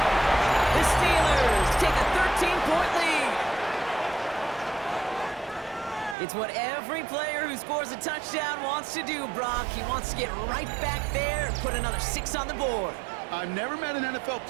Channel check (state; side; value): drops out; left; at 6.2 s